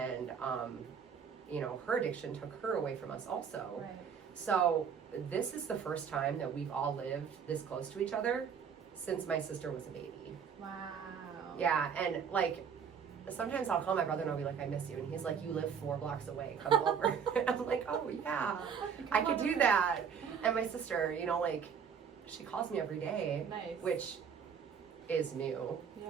her addiction took her away from us also. Right. So this is the first time that we've all lived this close to each other since my sister was a baby. Wow. Yeah, and like sometimes I'll call my brother and I'll be like, I miss you, and he's like, you live 4 blocks away, come over. And I'm like, oh yeah, I could do that. And my sister, she calls me every day. Nice. Which is new.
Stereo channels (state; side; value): quieter; left; 7.0 dB